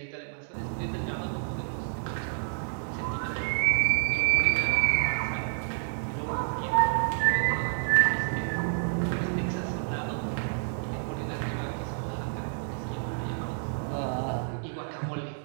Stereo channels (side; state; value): left; silent; digital silence